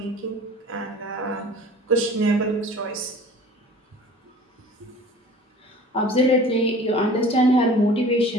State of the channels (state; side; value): normal; both; correlation 0.45